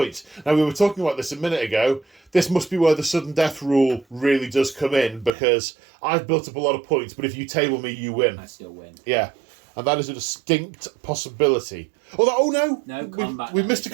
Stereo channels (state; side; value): drops out; left; at 5.3 s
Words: Now, we were talking about this a minute ago. This must be where the sudden death rule really does come in, because I've built up a lot of points, but if you table me, you win. I still win. Yeah. And that is a distinct possibility. No, combat. We missed a